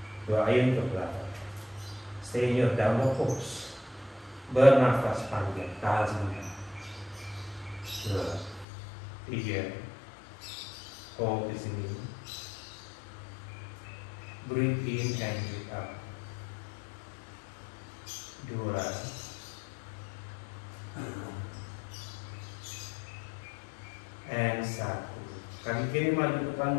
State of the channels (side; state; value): right; drops out; at 8.7 s